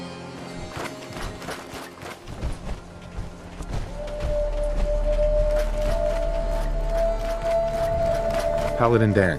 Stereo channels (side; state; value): both; identical; correlation 1.00